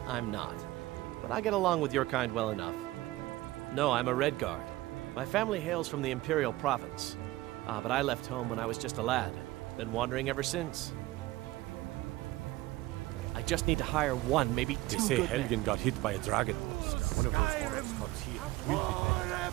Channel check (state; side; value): quieter; left; 18.2 dB